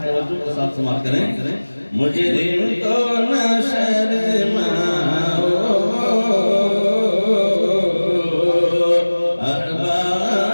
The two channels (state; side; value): inverted; both; correlation -1.00